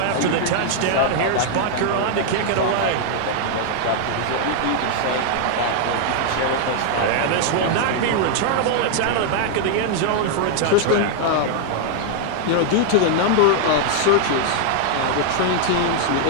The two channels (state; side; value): different; both; correlation 0.00